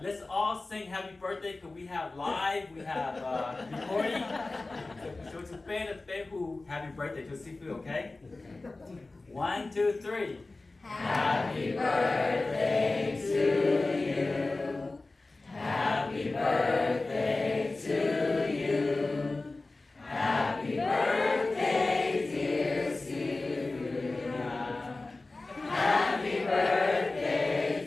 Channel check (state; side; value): quieter; right; 3.3 dB